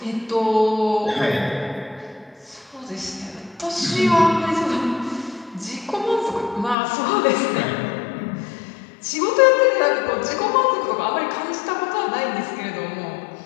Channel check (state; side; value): drops out; right; at 6.8 s